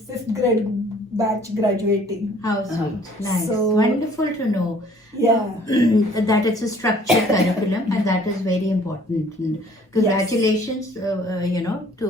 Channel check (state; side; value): normal; both; correlation 0.56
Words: 5th grade batch graduating. How sweet. Nice. So- Wonderful to know. Yeah. That it's a structured curriculum, and that is very important. And congratulations,